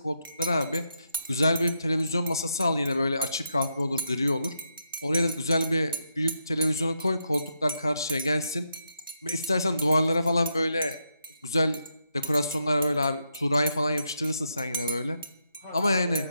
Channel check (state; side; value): inverted; both; correlation -0.82